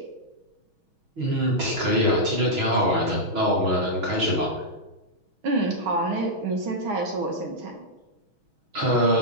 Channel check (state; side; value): late; left; 6.2 ms